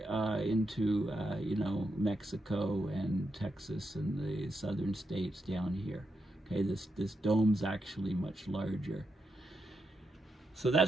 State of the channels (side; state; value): both; normal; correlation 0.84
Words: into, you know, Mexico and Texas and the southern states down here. Okay, this dome's actually much larger. So